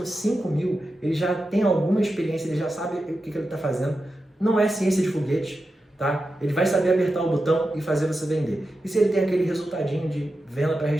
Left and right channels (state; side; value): normal; both; correlation 0.90